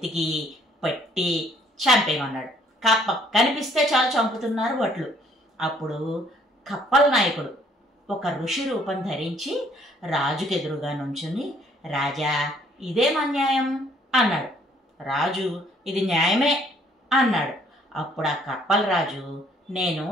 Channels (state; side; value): normal; both; correlation 0.63